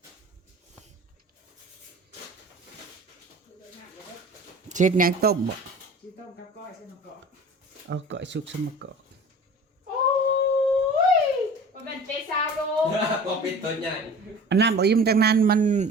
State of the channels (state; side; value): normal; both; correlation 0.41